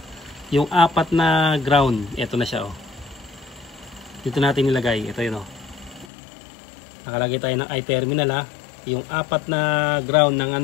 yung apat na ground, ito na siya oh. Dito natin nilagay, ito yun oh. Nakalagay tayo ng eye terminal ha. Yung apat na ground ng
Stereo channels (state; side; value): drops out; right; at 6.1 s